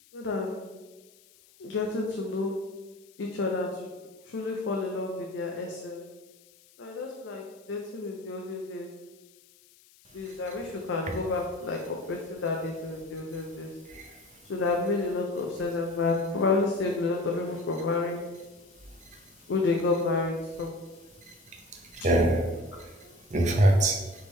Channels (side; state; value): left; noise; hiss, 27 dB below the sound